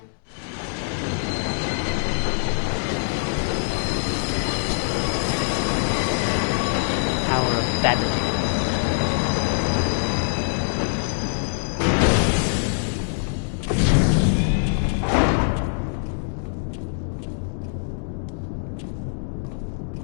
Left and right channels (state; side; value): silent; right; digital silence